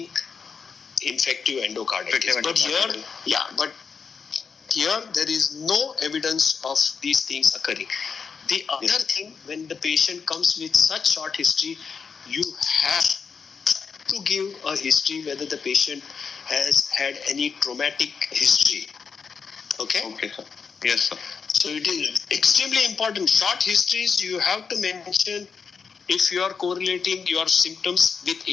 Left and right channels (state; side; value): quieter; right; 5.8 dB